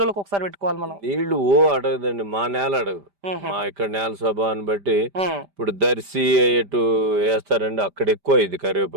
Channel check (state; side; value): late; left; 5.0 ms